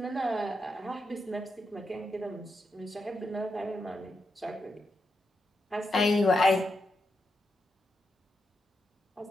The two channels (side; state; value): both; normal; correlation 0.85